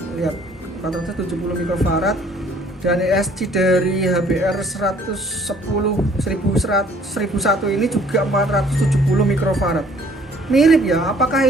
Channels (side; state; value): both; normal; correlation 0.58